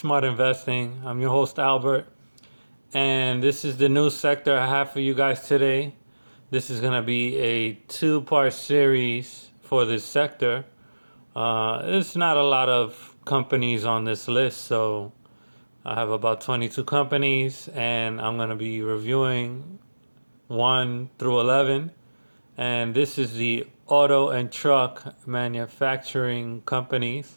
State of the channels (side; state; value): both; inverted; correlation -1.00